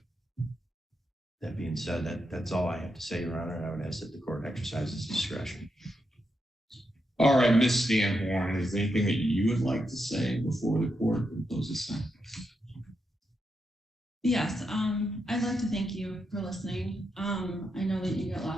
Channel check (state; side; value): normal; both; correlation 0.84